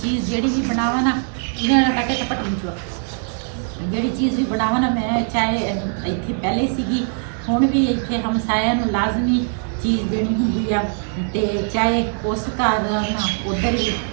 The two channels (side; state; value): left; silent; 58 dB below the other